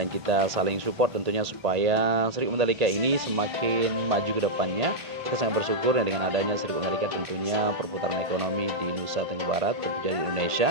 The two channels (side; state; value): left; late; 1.5 ms